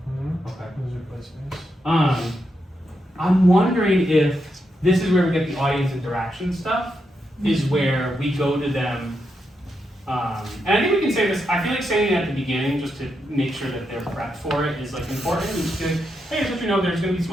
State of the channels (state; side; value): normal; both; correlation 0.83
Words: Okay. Those are placements. I'm wondering if this is where we get the audience interaction stuff, is where we go to them. And I think we can say this, I feel like saying it at the beginning just to make sure that they're prepped for it is like important. We just be like, hey, just let you know there's going to be